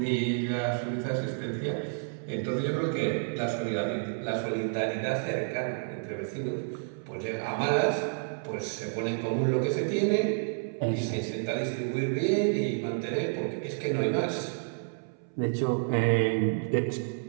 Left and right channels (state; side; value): silent; left; 58 dB below the other